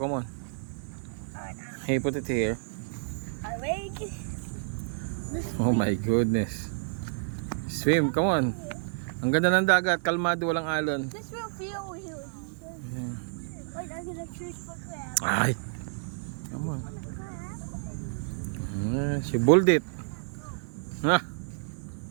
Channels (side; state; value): left; silent; 56 dB below the other